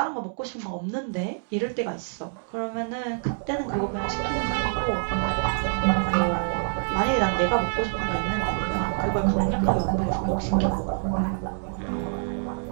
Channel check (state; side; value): silent; left; digital silence